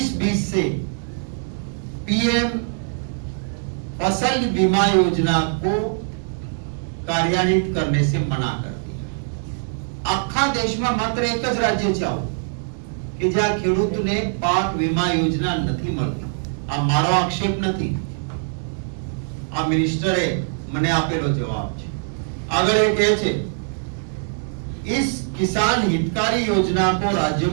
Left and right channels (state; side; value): silent; left; 64 dB below the other